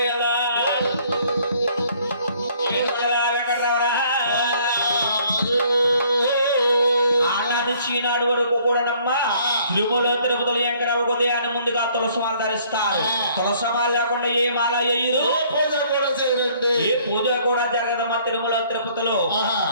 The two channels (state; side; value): inverted; both; correlation -0.60